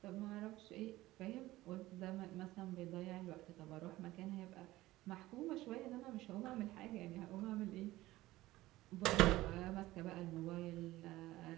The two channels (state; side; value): quieter; left; 17.3 dB